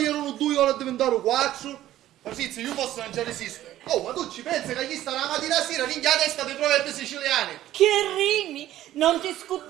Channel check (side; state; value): left; quieter; 13.5 dB